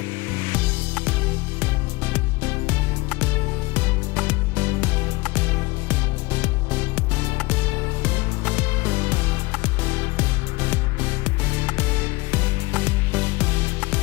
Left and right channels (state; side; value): quieter; right; 22.8 dB